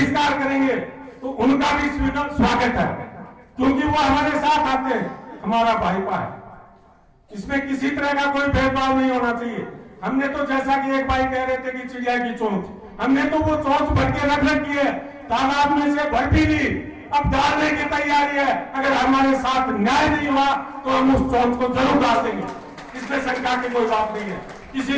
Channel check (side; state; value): both; identical; correlation 1.00